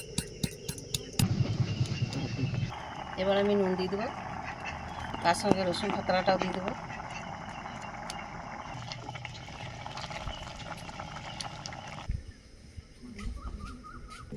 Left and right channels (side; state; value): both; identical; correlation 1.00